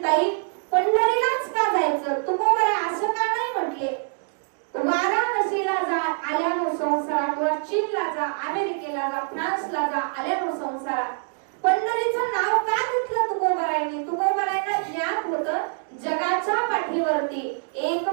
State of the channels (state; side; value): silent; left; 62 dB below the other